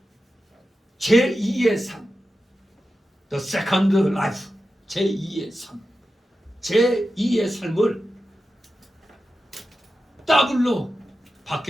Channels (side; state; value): both; normal; correlation 0.92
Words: 제2의 삶, the second life, 제2의 삶, 제2의 삶을 더블로